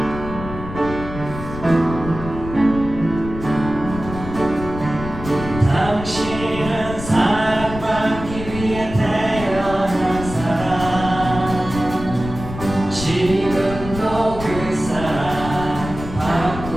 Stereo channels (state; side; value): noise; left; rumble, 10 dB below the sound